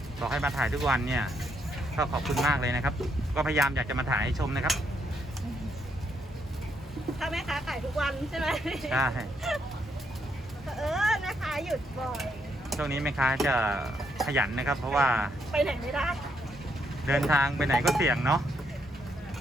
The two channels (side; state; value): both; normal; correlation 0.75